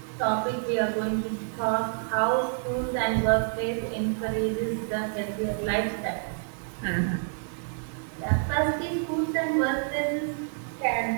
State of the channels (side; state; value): left; silent; digital silence